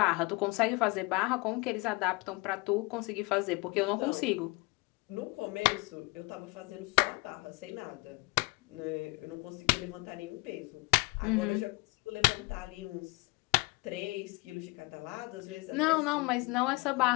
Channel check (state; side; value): quieter; right; 26.0 dB